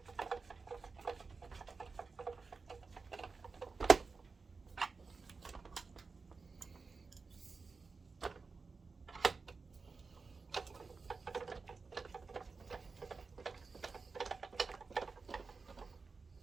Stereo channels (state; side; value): quieter; left; 4.4 dB